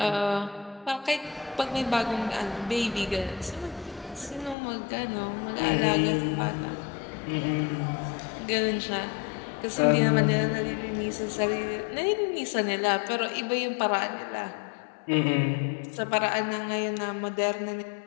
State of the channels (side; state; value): right; drops out; at 4.5 s